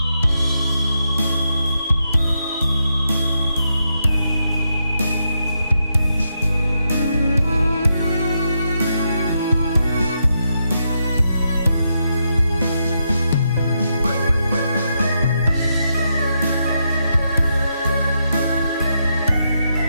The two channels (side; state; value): both; inverted; correlation -0.82